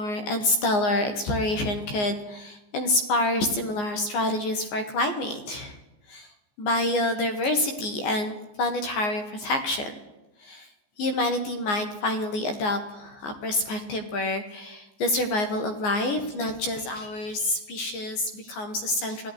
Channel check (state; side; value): late; right; 14 ms